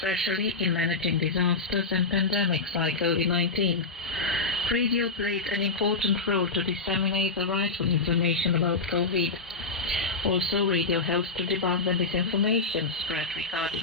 in managing disasters and pandemics like COVID-19. Radio played an important role to disseminate the rightful information about COVID. Also, radio helps to debunk the misinformation spread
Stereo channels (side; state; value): right; quieter; 3.9 dB